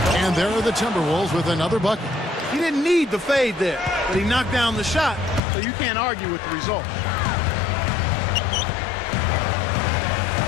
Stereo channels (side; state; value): right; drops out; at 5.4 s